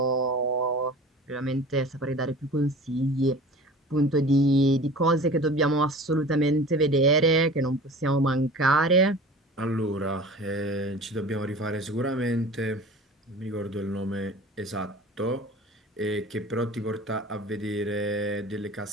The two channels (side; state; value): both; normal; correlation 0.40